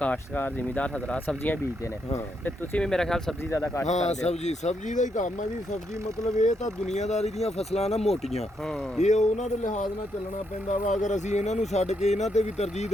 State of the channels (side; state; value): both; normal; correlation 0.78